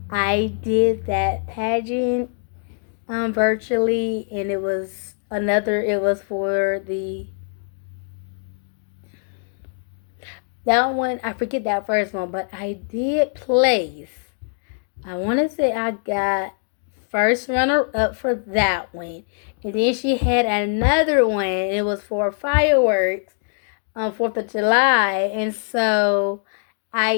I did that pageant virtually, and it was for the that one. I forget that first one, but I did place. I want to say I got first runner up for that one, and then she had another one. It was for fireworks on 4th of July, and so I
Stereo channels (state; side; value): silent; right; digital silence